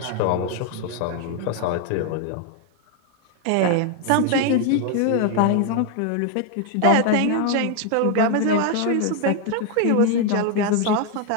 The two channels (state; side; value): different; both; correlation 0.01